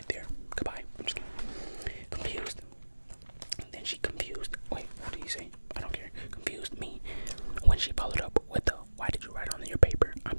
there. Goodbye. I'm just kidding. Confused. Then she confused. Wait, what did you say? I don't care. Confused me when she followed up with the "Why did you write on your paper?"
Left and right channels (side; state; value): both; inverted; correlation -1.00